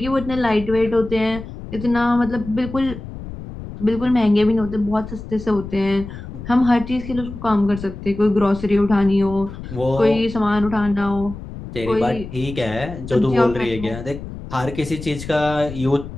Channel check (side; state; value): left; noise; rumble, 11 dB below the sound